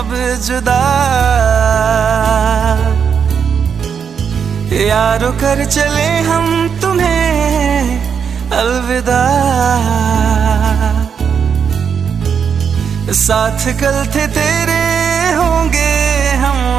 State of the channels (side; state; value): left; quieter; 7.0 dB